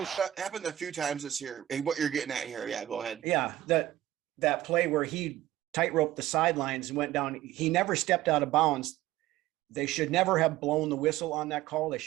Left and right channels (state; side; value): quieter; left; 14.2 dB